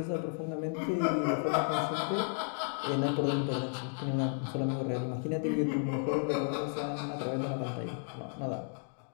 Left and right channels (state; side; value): silent; right; 56 dB below the other